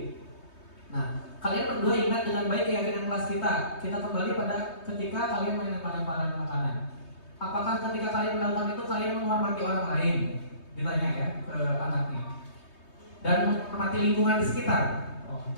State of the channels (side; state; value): right; late; 3.2 ms